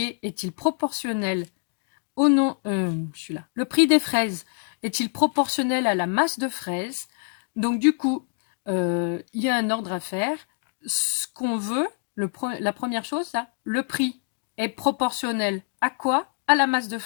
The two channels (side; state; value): right; silent; 57 dB below the other